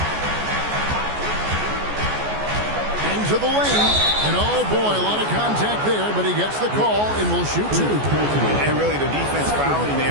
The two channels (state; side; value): late; left; 14 ms